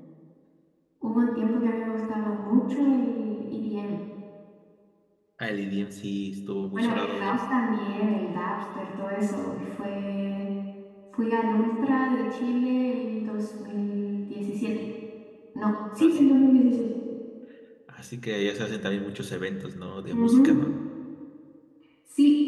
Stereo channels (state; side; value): identical; both; correlation 1.00